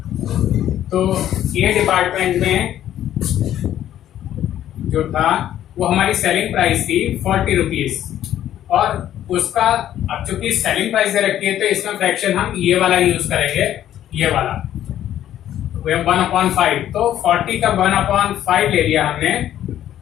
तो ये डिपार्टमेंट में जो था वो हमारी सेलिंग प्राइस थी 40 रुपीज, और उसका अब चूंकि सेलिंग प्राइस दे रखी है तो इसमें फ्रैक्शन हम ये वाला यूज करेंगे, ये वाला 1/5। तो 40 का 1/5 ले लिया हमने,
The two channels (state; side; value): quieter; right; 11.6 dB